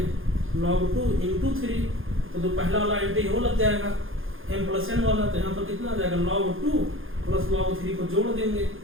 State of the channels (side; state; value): left; late; 0.59 ms